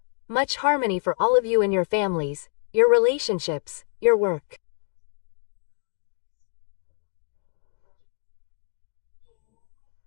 much harmony for all of you and your families, your relationships, your work.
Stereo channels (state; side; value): silent; right; 57 dB below the other